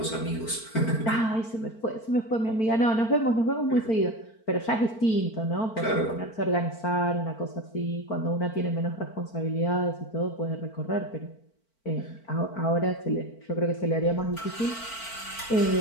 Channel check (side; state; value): right; late; 4.5 ms